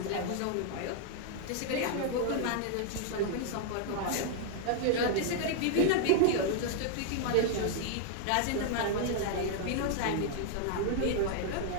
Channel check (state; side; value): different; both; correlation 0.00